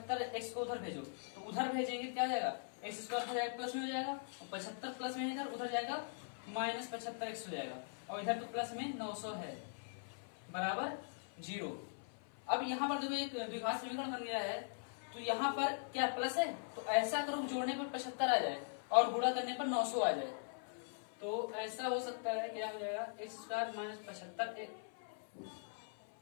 को उधर भेजो, तो उधर भेजेंगे क्या हो जाएगा? एक्स स्क्वायर हो जाएगा प्लस में हो जाएगा, और 75 प्लस में इधर उधर जाएगा माइनस 75x हो जाएगा, और इधर तो प्लस में 900 है, बराबर 0। अब यहाँ पर देखो एक द्विघात समीकरण बन गया है, तो यहाँ पर क्या प्लस है, तो ऐसा करो जोड़ने पर 75 आ जाए और गुणा करने पर 900 आ जाए। तो ऐसा हो सकता है, क्या हो जाएगा? एक्स स्क्वायर माइनस 75,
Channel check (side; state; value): right; silent; 50 dB below the other